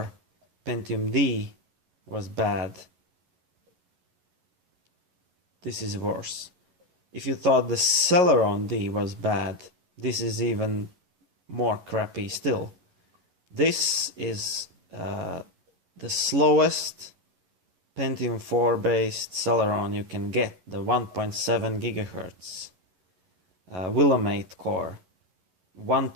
Pentium D was bad, this is worse. If you thought the Celeron D was bad, this is even more crappy still. This is the slowest Pentium 4 based Celeron you can get, the 1.7 gigahertz Willamette core, 1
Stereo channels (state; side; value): late; left; 11 ms